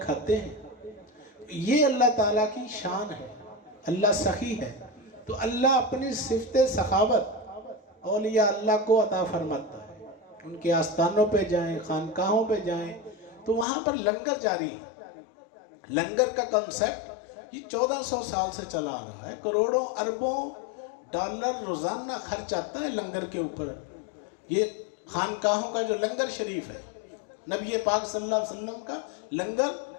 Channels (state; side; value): drops out; right; at 13.7 s